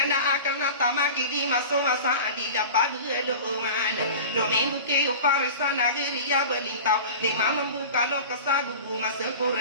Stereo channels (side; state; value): both; inverted; correlation -0.35